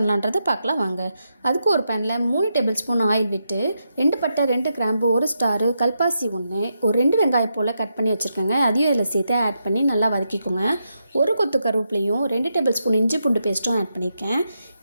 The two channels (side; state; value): both; inverted; correlation -0.84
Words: பார்க்கலாம் வாங்க. அதுக்கு ஒரு பேனில் 3 டேபிள் ஸ்பூன் ஆயில் விட்டு 2 பட்டை 2 கிராம்பு 1 ஸ்டாரு கல்பாசி 1 ஒரு 2 வெங்காயம் போல் கட் பண்ணி வச்சுருக்கேங்க. அதையும் இதில் சேர்த்து ஆட் பண்ணி நல்லா வதக்கிக்கோங்க. ஒரு கொத்து கருவேப்பிலையும் 2 டேபிள் ஸ்பூன் இஞ்சி பூண்டு பேஸ்ட்டும் ஆட் பண்ணியிருக்கேன்.